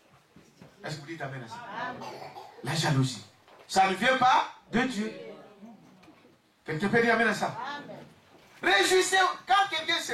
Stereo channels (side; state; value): both; identical; correlation 1.00